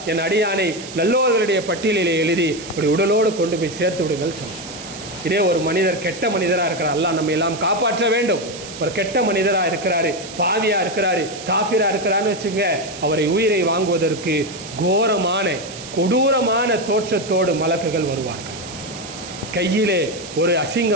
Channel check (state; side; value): noise; right; hiss, 13 dB below the sound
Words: என் அடியானை நல்லோர்களுடைய பட்டியலிலே எழுதி அப்படி உடலோடு கொண்டு போய் சேர்த்து விடுங்கள் சொல்லும். இதே ஒரு மனிதர் கெட்ட மனிதராக இருக்கிறார், அல்லாஹ் நம்ம எல்லாம் காப்பாற்ற வேண்டும். ஒரு கெட்ட மனிதராக இருக்கிறாரு, பாவியாக இருக்கிறாரு, காஃபிராக இருக்கிறான்னு வச்சுங்க, அவரை உயிரை வாங்குவதற்கு கோரமான கொடூரமான தோற்றத்தோடு மலக்குகள் வருவார்கள். கையிலே ஒரு